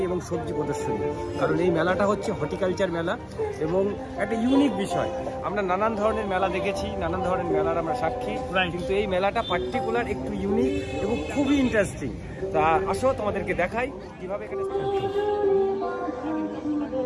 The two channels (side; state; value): both; identical; correlation 1.00